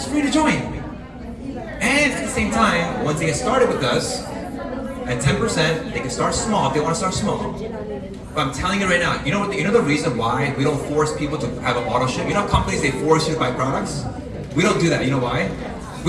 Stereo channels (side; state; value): both; identical; correlation 1.00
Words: free to join. And at the same time, once they get started with us, at 10%, they can start small if they want to start small. But I'm telling you right now, you know the reason why we don't force people to have an auto ship? You know companies, they force you to buy products? We don't do that. You know why?